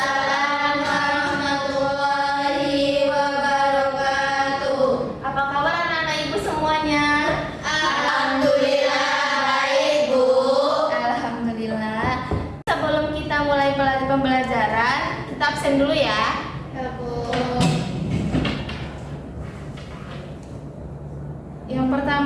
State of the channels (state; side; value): identical; both; correlation 1.00